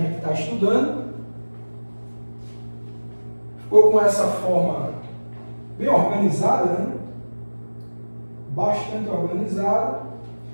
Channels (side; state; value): both; inverted; correlation -1.00